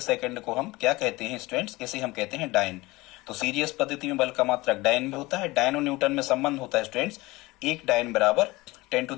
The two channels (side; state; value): right; quieter; 21.3 dB